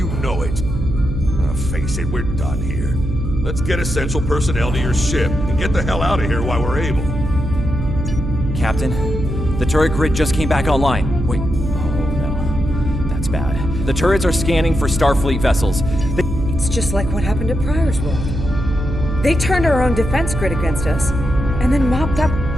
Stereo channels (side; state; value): right; noise; hum, 4 dB below the sound